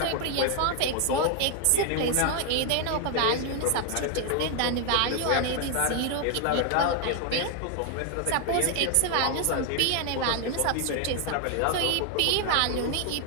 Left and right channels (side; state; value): both; different; correlation 0.01